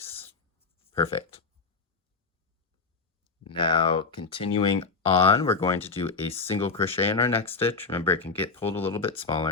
Perfect. Now, continuing on, we're going to do a single crochet in our next stitch. Remember, it can get pulled a little bit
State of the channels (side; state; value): right; quieter; 4.3 dB